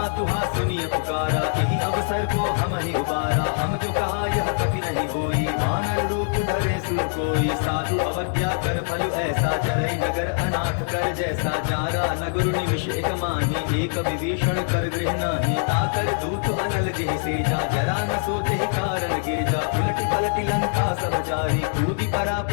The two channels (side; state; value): right; silent; digital silence